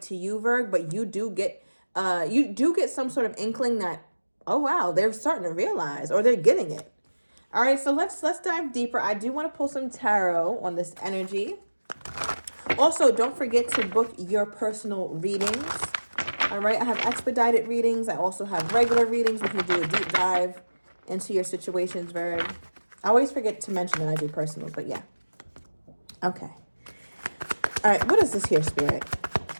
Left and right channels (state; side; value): inverted; both; correlation -1.00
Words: to you, Virg, but you do get some sort of inkling that, oh wow, they're starting to realize, or they're getting it. All right, so let's dive deeper. I do want to pull some tarot on this energy. Also, don't forget to book your personal readings. All right, I have expedited readings. I also have regular readings. We can do a deep dive into your situations, Virg. I always forget to mention that I do personals, but yeah. Okay. All right, what is this here, Spirit?